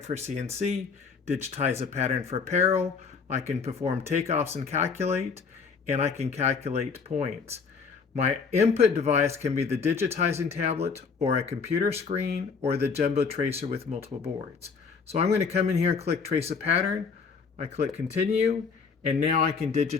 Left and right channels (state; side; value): quieter; right; 5.4 dB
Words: for CNC, digitize a pattern for apparel, I can perform takeoffs and calculate, and I can calculate points. My input device can be the digitizing tablet or a computer screen or the jumbo tracer with multiple boards. So I'm going to come in here and click trace a pattern. I click continue, and now I can